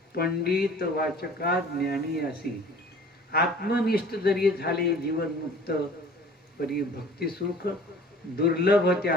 पंडित वाचका ज्ञानी असी आत्मनिष्ठ जरी झाले जीवन मुक्त परी भक्ती सुख दुर्लभ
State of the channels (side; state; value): both; normal; correlation 0.48